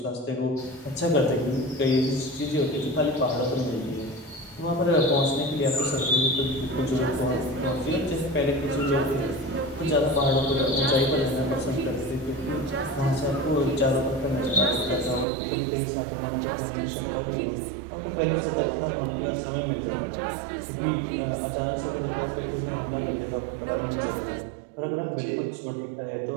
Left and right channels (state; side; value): drops out; left; at 15.2 s